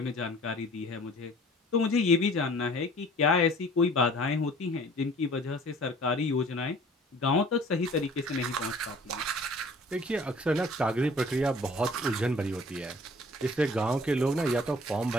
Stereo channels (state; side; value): normal; both; correlation 0.50